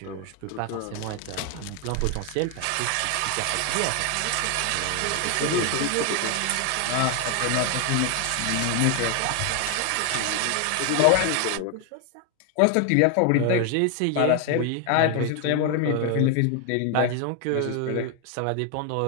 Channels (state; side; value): different; both; correlation 0.01